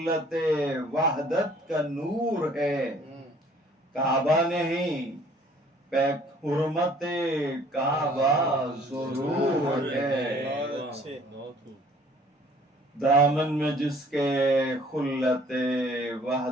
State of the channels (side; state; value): both; normal; correlation 0.56